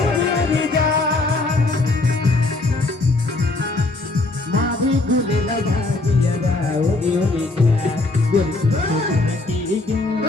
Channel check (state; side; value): quieter; right; 3.1 dB